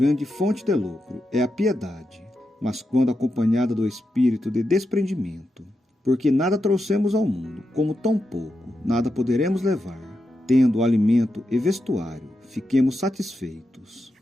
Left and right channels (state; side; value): normal; both; correlation 0.87